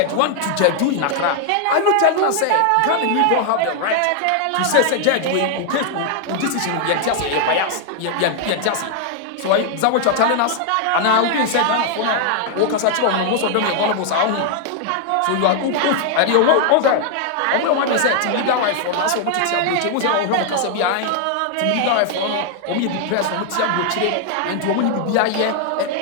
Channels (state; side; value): different; both; correlation 0.00